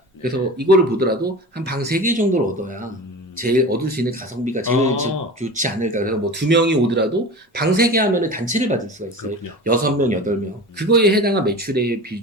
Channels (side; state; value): both; normal; correlation 0.33